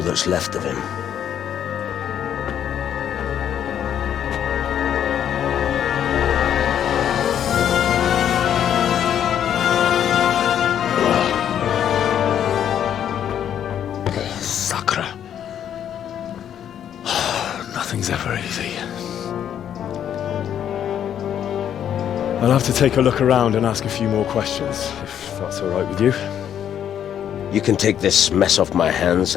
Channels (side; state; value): right; quieter; 9.6 dB